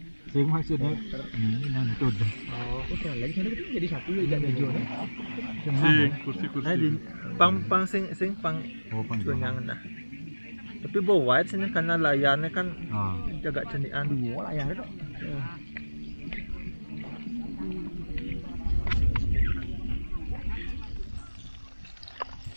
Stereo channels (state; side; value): inverted; both; correlation -1.00